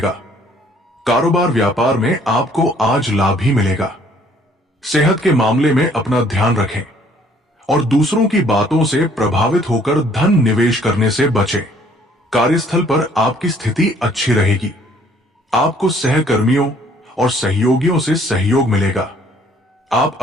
कारोबार व्यापार में आपको आज लाभ ही मिलेगा। सेहत के मामले में अपना ध्यान रखें और दूसरों की बातों से प्रभावित होकर धन निवेश करने से बचें। कार्यस्थल पर आपकी स्थिति अच्छी रहेगी। आपको सहकर्मियों और सहयोगियों से सहयोग मिलेगा। आप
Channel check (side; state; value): both; normal; correlation 0.60